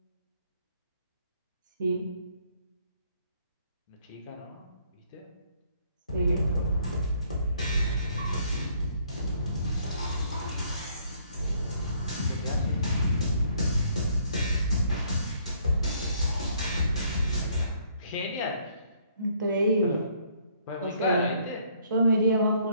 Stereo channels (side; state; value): both; inverted; correlation -0.65